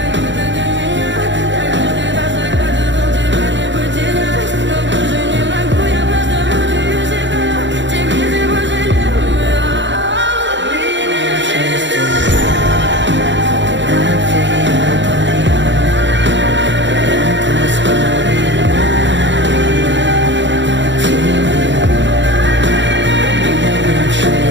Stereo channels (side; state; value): left; late; 0.53 ms